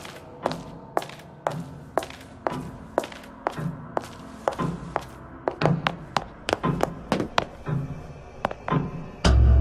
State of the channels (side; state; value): both; identical; correlation 1.00